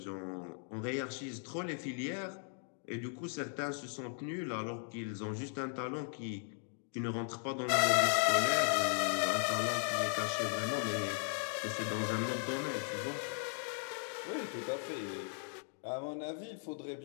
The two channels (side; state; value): right; silent; 53 dB below the other